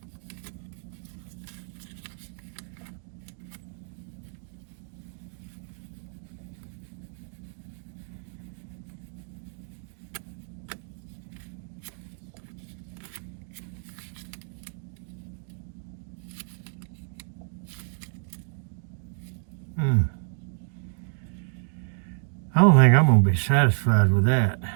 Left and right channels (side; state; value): left; silent; 58 dB below the other